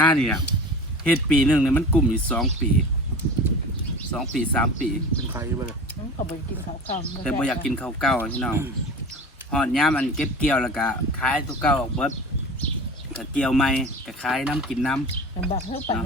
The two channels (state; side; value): normal; both; correlation 0.35